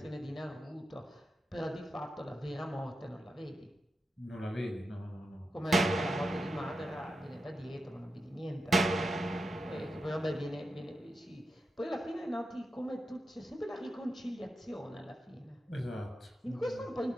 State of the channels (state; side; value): normal; both; correlation 0.89